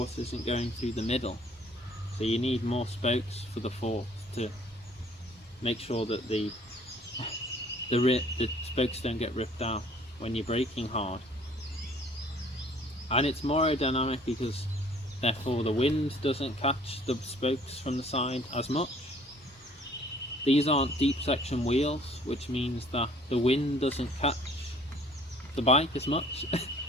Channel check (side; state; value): both; normal; correlation 0.56